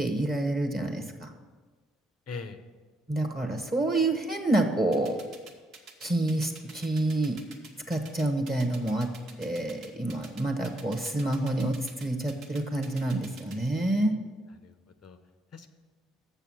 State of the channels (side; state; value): both; normal; correlation 0.77